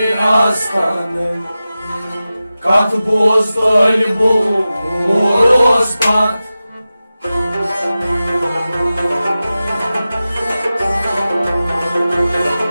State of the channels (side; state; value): both; inverted; correlation -0.95